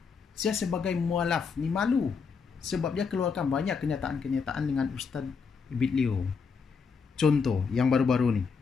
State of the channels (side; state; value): right; quieter; 5.5 dB